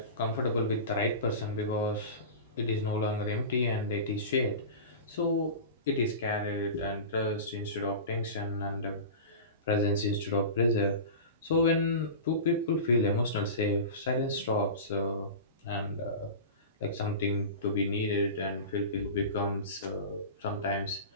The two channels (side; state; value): both; inverted; correlation -0.30